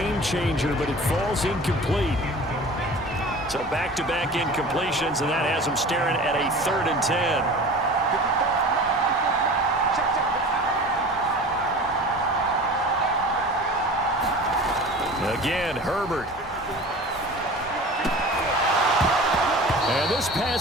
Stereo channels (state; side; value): normal; both; correlation 0.39